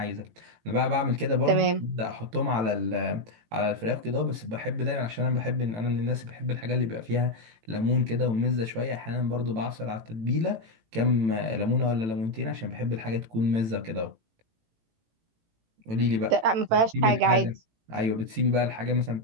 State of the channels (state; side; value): late; left; 18 ms